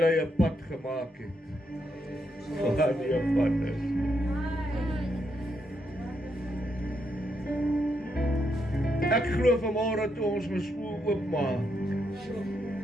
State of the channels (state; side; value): normal; both; correlation 0.79